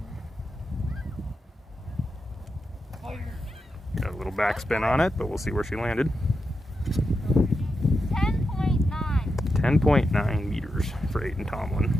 Got a little backspin on it, but we'll see where she landed. 10.9 meters for Aiden Tomlin.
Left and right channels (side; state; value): both; normal; correlation 0.87